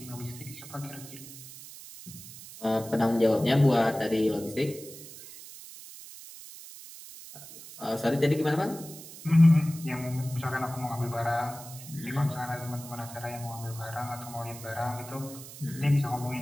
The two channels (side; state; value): right; noise; hiss, 15 dB below the sound